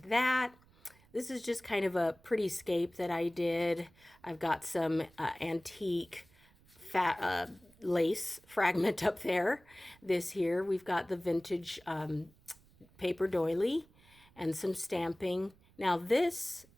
that. This is just kind of a pretty scape that I did. I've got some antique lace fragment up there. This here, we've got the vintage paper doily and some stamping. Now this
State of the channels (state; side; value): noise; right; rumble, 28 dB below the sound